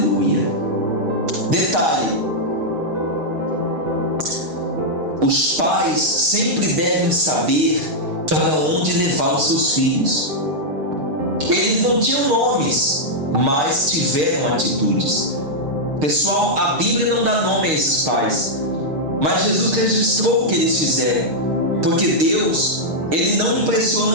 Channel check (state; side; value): late; left; 6.5 ms